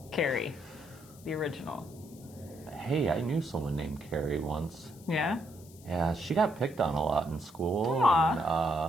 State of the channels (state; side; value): noise; left; hiss, 23 dB below the sound